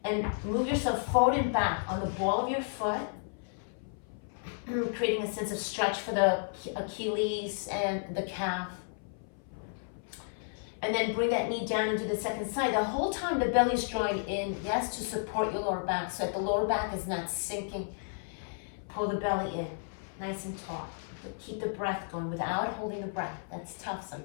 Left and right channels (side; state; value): right; silent; 56 dB below the other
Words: and move yourself forward and back on the ball of your foot, creating a sense of stretch for the Achilles and the calf. And then bring that knee down into the second side. The whole time the belly's drawing in, yes, to support your lower back so that the lower back is not sinking. Pull the belly in, nice and tall. But keep the breath going without holding the breath. That's tough